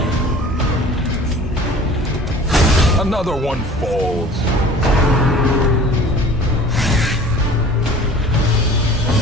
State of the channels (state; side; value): normal; both; correlation 0.45